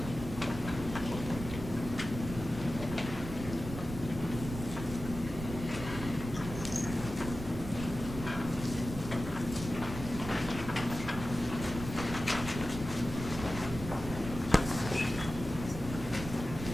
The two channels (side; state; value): right; noise; rumble, 9 dB below the sound